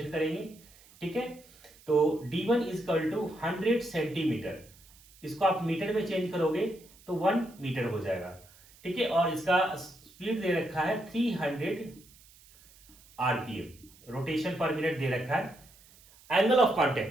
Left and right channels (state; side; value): noise; right; hiss, 25 dB below the sound